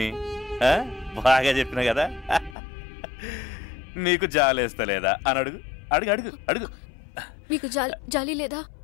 బాగా చెప్పిన కదా. నీకు జాలేస్తలేదా అని అడుగు. అడుగు అడుగు అడుగు. మీకు జాలి లేదా?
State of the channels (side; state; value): right; drops out; at 2.6 s